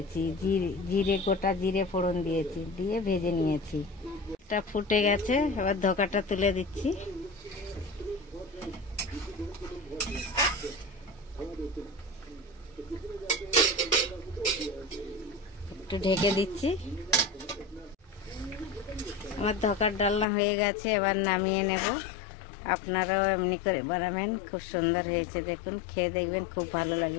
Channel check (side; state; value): right; drops out; at 20.2 s